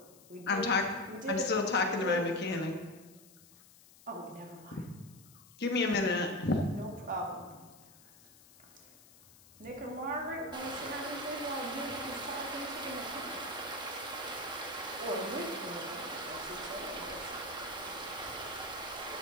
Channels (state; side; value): noise; left; hiss, 23 dB below the sound